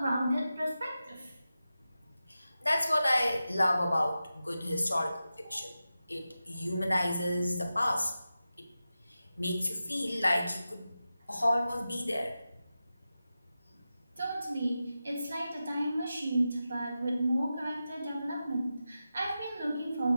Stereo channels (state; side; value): inverted; both; correlation -0.92